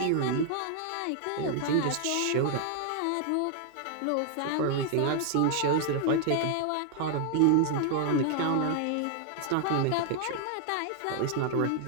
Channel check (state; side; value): different; both; correlation 0.00